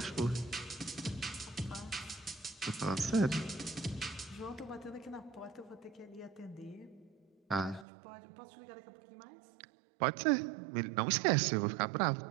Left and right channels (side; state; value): left; drops out; at 7.9 s